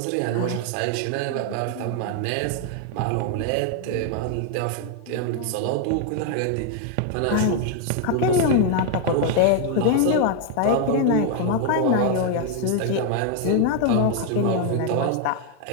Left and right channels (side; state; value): both; different; correlation 0.00